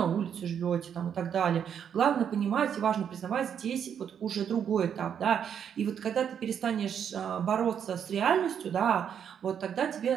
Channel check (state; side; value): quieter; left; 8.3 dB